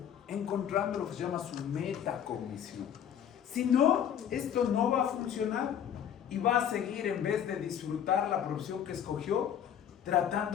Encontrando lo que se llama su metacognición. Si no, esto no va a funcionar. Y va a seguir, en vez de disfrutar la profesión que escogió,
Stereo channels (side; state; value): right; quieter; 9.2 dB